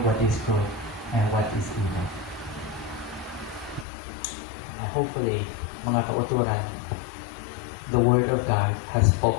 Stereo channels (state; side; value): drops out; right; at 3.9 s